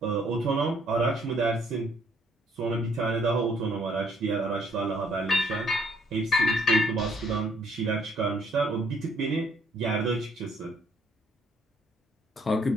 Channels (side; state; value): both; normal; correlation 0.65